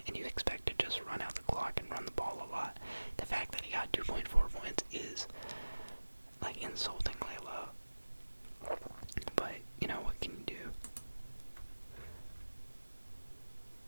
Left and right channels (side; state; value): both; inverted; correlation -1.00